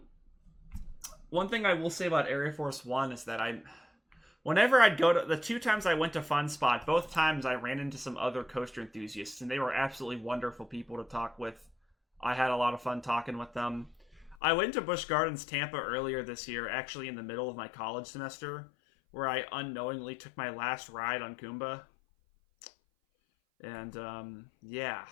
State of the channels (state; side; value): drops out; right; at 14.4 s